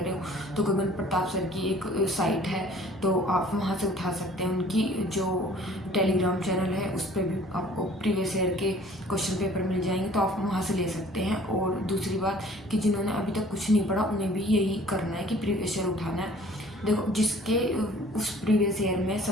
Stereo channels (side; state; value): both; normal; correlation 0.52